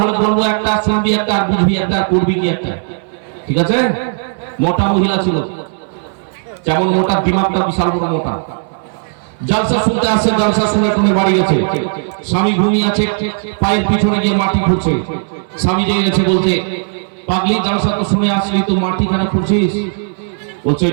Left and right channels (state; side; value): silent; left; 63 dB below the other